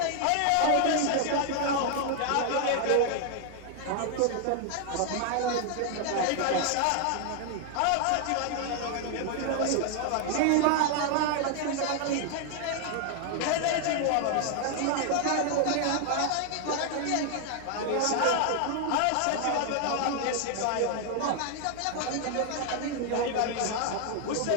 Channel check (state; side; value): different; both; correlation 0.00